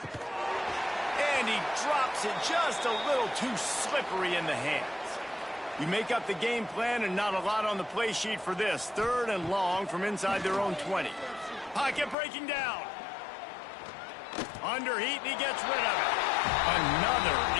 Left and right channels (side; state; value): right; drops out; at 12.2 s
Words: And he drops it just a little too slippery in the hands. You make up the game plan and not a lot on the play sheet for this. 3rd and long from inside their own 20. Pocket breaking down. Under heat, and he gets rid of it. Another